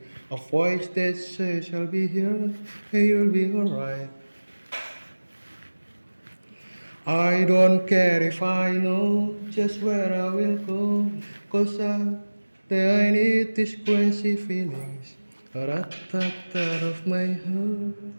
A voice that says, I'll be here and you'll be alright. I don't care if I know just where I will go, 'cause I need these crazy feelings, rat-tat-tat of my heart.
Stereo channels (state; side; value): inverted; both; correlation -1.00